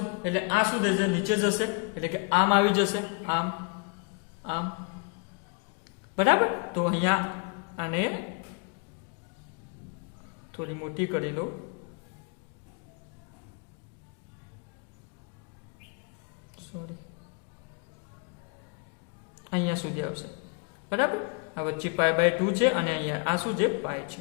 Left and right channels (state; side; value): quieter; right; 35.4 dB